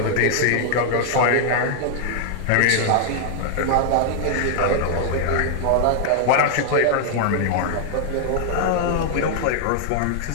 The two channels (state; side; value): different; both; correlation -0.01